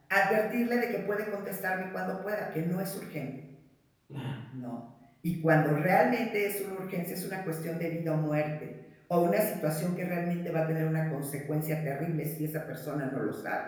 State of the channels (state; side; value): identical; both; correlation 1.00